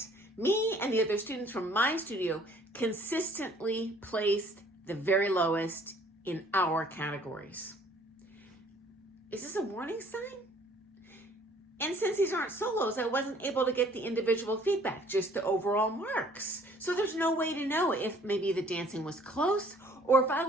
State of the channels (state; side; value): normal; both; correlation 0.57